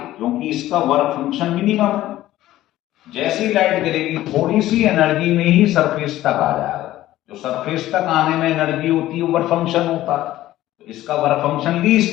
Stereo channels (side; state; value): right; quieter; 14.8 dB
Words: क्योंकि इसका वर्क फंक्शन मिनिमम है। जैसी लाइट गिरेगी थोड़ी सी एनर्जी में ही सरफेस तक आ जाएगा। जो सरफेस तक आने में एनर्जी होती है वर्क फंक्शन होता है। तो इसका वर्क फंक्शन